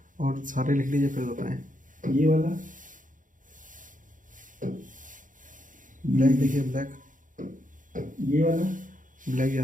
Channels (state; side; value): late; left; 0.38 ms